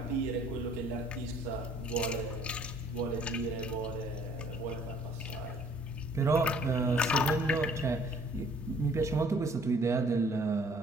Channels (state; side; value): normal; both; correlation 0.58